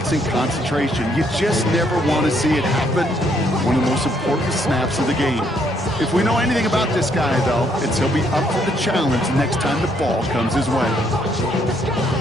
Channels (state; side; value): normal; both; correlation 0.70